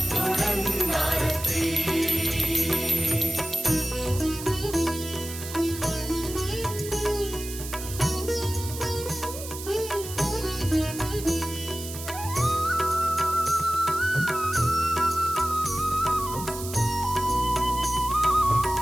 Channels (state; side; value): noise; right; hiss, 10 dB below the sound